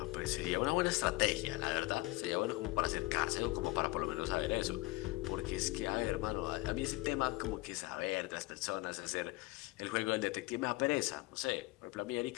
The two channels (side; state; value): right; quieter; 21.0 dB